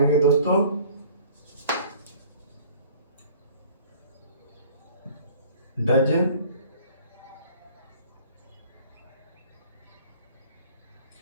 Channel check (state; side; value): inverted; both; correlation -0.50